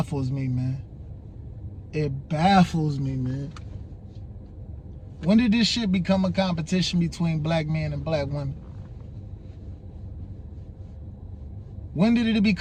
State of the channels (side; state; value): both; identical; correlation 1.00